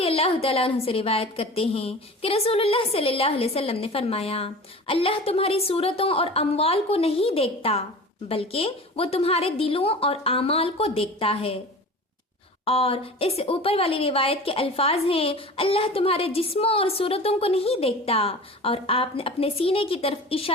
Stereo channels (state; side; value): normal; both; correlation 0.37